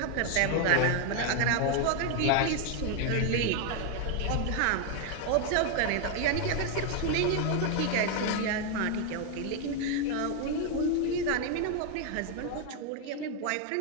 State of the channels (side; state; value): both; different; correlation 0.01